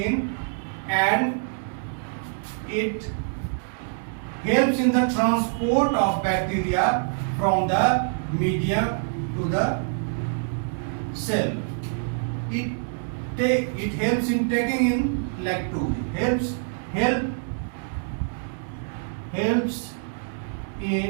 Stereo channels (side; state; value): left; silent; 61 dB below the other